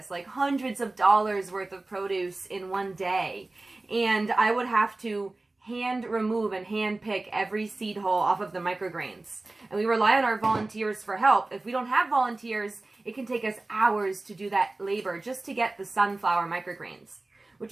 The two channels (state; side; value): quieter; left; 3.0 dB